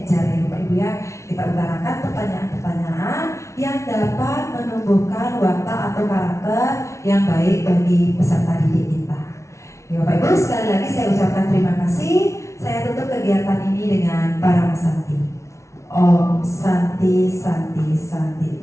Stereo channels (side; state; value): right; late; 0.14 ms